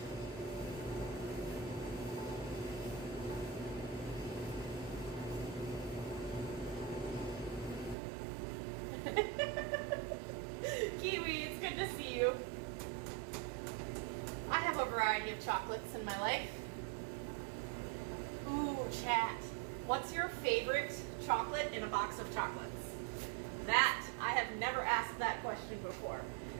Kiwi, it's good to see you. I have a variety of chocolates in my life. Ooh, chat. What's your favorite chocolate in a box of chocolates? That I have never asked that question before.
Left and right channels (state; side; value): drops out; left; at 8.0 s